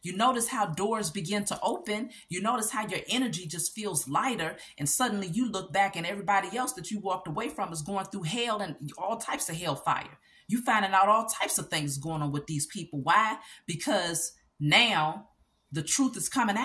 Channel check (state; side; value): identical; both; correlation 1.00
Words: You notice how doors begin to open. You notice how your energy just feels lighter. And suddenly you look back and everybody else that you walked away from is going through hell and all types of hellfire. You finding out all types of things going on with these people. Why? Because now the truth is coming